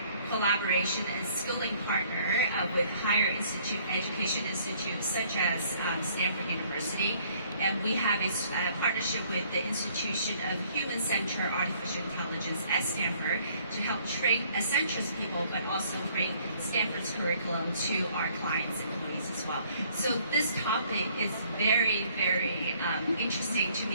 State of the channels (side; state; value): both; inverted; correlation -0.61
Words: collaboration and skilling partner with higher education institutes such as Stanford University. And we have a partnership with the Institution of Human-Centered Artificial Intelligence at Stanford to help train Accenture's people, but also bring Stanford's curriculum to our clients and employees as well. So this topic is very, very interesting to